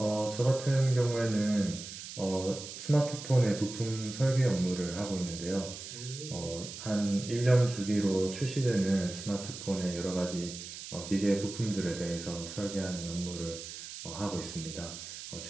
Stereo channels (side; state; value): right; noise; hiss, 11 dB below the sound